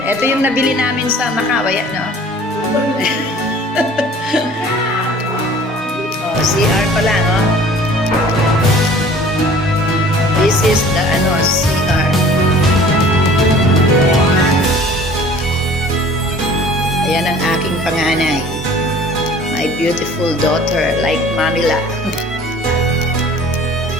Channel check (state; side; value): normal; both; correlation 0.49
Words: Ito yung nabili namin sa Macau, yan, no? CR pala, no? This is the, CR. Ayan ang aking panganay. My beautiful daughter, like Manila.